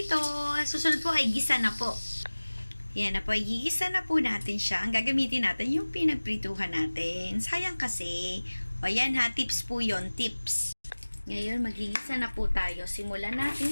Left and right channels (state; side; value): inverted; both; correlation -1.00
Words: susunod po ay gisa na po. Yan na po, gigisa na po natin siya. Ang gagamitin natin yung pinagprituhan natin. Sayang kasi. Yan ha, tips po yon, tips. Ngayon, magigisa na po tayo. Simulan natin